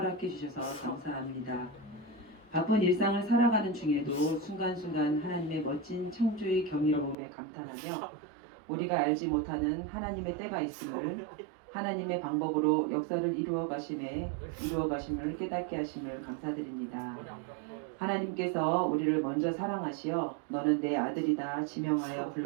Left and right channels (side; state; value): left; drops out; at 7.2 s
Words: 주셔서 감사합니다. 바쁜 일상을 살아가는 중에도 순간순간 하나님의 멋진 창조의 경이로움에 감탄하며 우리가 알지 못하는 하나님의 때가 있음을, 하나님의 방법으로 역사를 이루어 가심을 깨닫게 하심을 감사드립니다. 하나님께서 우리를 먼저 사랑하시어 너는 내 아들이다 지명하여